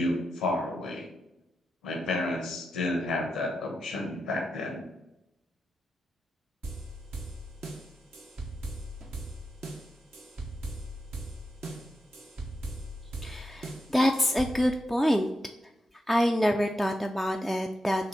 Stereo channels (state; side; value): normal; both; correlation 0.87